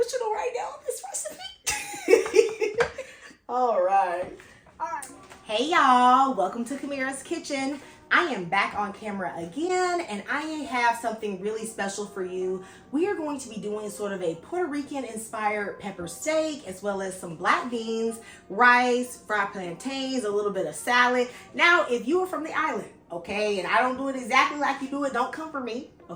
right now on this recipe. All right. Hey y'all, welcome to Camirra's Kitchen. I am back on camera again, and I have something really special for you. We are going to be doing sort of a Puerto Rican inspired pepper steak, as well as some black beans, rice, fried plantains, a little bit of salad. Now, if you are from the island, okay, and I don't do it exactly like you do it, don't come for me.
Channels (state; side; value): identical; both; correlation 1.00